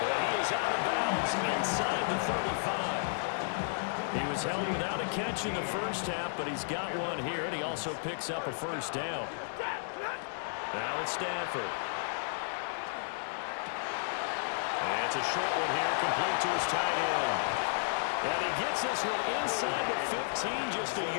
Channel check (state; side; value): silent; right; digital silence